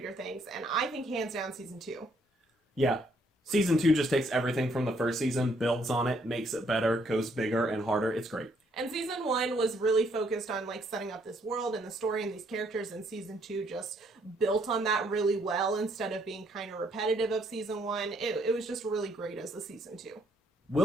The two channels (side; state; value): both; normal; correlation 0.69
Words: Things, and I think hands down season 2. Yeah. Season 2 just takes everything from the first season, builds on it, makes it better, goes bigger and harder. It's great. And season 1 was really focused on like setting up this world and the story and these characters, and season 2 just built on that really well instead of being kind of repetitive of season 1. It was just really great as a season 2.